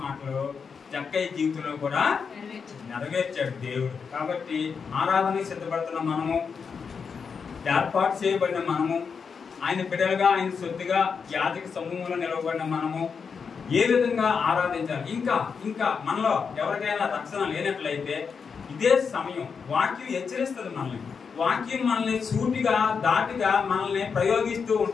మాటలు జక్కయ్య జీవితంలో కూడా నెరవేర్చాడు దేవుడు. కాబట్టి ఆరాధనకి సిద్ధపడుతున్న మనము, ఏర్పాటు చేయబడిన మనము, ఆయన బిడ్డలుగా ఆయన సొత్తుగా యాజక సమూహంలో నిలవబడిన మనము ఏ విధంగా ఆరాధించాలి. ఇంకా మనలో ఎవరికైనా రక్షణ లేనట్లయితే ఇదే సమయం. వాక్యం హెచ్చరిస్తుంది మనల్ని. వాక్యం మనల్ని సూటిగా దాటిగా మనల్ని ప్రయోగిస్తూ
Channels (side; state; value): right; quieter; 5.9 dB